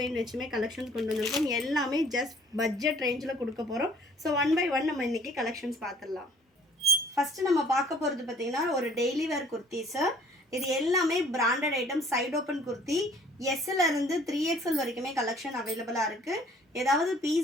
வச்சுமே கலெக்ஷன்ஸ் கொண்டு வந்திருக்கோம். எல்லாமே ஜஸ்ட் பட்ஜெட் ரேஞ்சில் கொடுக்க போகிறோம். ஸோ ஒன் பை ஒன் நம்ம இன்றைக்கி கலெக்ஷன்ஸ் பார்த்துடலாம். ஃபஸ்ட்டு நம்ம பார்க்க போகிறது பார்த்திங்கன்னா ஒரு டெய்லி வேர் குர்த்திஸு. இது எல்லாமே branded item, side open kurti. எஸ்லேருந்து 3XL வரைக்குமே கலெக்ஷன் அவைலபிளாக இருக்குது. ஏதாவது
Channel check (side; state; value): both; normal; correlation 0.55